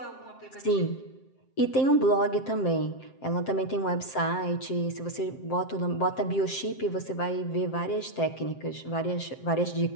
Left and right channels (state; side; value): late; right; 7.6 ms